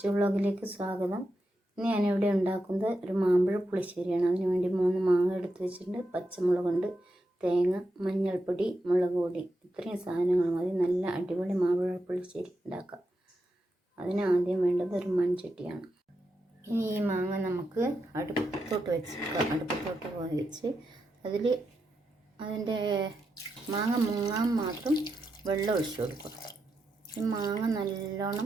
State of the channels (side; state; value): both; normal; correlation 0.86